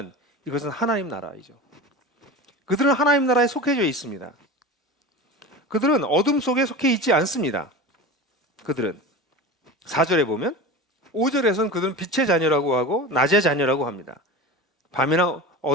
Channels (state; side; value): normal; both; correlation 0.31